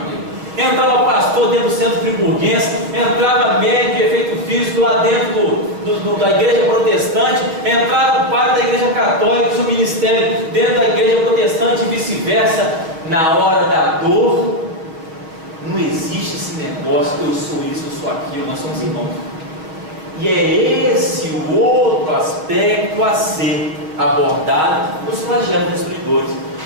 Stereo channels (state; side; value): late; left; 6.2 ms